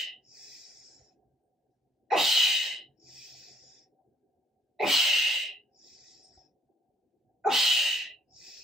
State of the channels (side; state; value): both; normal; correlation 0.64